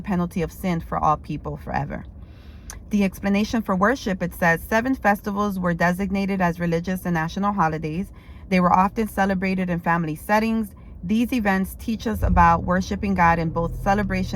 penalty of sin for all people forever. The explanation for worship, it says 7 festivals were designated as religious and national holidays. They were often celebrated in family settings. These events teach us about worshiping God in both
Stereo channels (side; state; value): both; identical; correlation 1.00